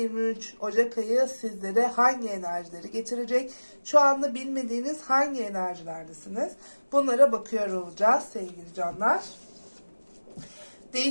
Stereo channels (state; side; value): inverted; both; correlation -1.00